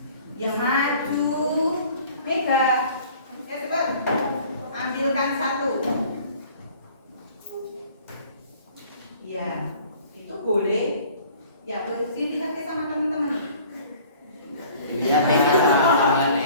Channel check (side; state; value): both; inverted; correlation -0.51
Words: Yang maju, Mega, cepat. Ambilkan 1. Ya, itu boleh. Ya, posisi lihat ke sama teman-teman. Iya, teman-teman.